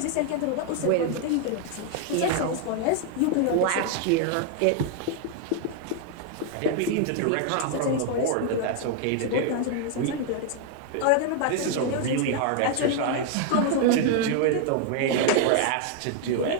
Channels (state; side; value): different; both; correlation 0.00